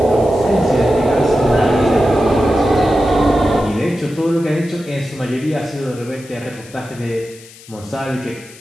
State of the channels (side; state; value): left; noise; hiss, 21 dB below the sound